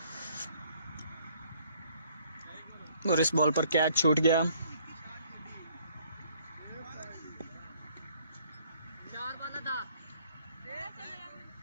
और इस बॉल पर कैच छूट गया। 4 वाला था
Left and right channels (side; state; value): both; inverted; correlation -0.62